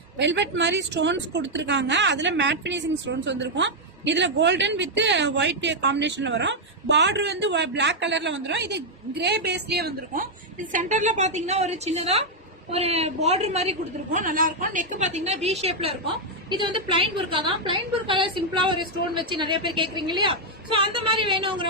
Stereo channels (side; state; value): both; normal; correlation -0.01